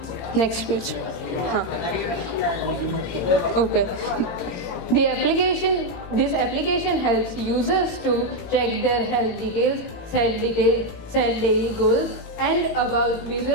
Next page. Okay. This application helps users to track their health details, set daily goals, and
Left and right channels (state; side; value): late; right; 18 ms